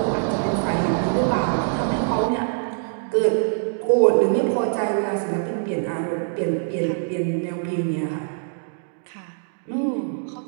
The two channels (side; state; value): left; silent; digital silence